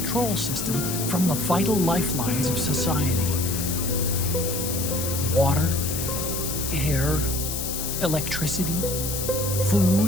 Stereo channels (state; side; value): noise; left; hiss, 4 dB below the sound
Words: system from the vital lifelines of society. Water, air, electricity,